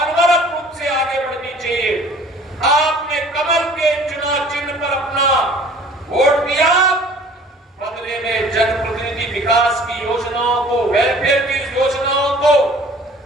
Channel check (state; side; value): normal; both; correlation 0.50